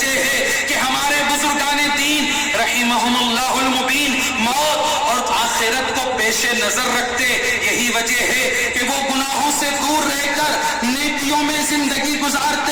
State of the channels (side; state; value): both; identical; correlation 1.00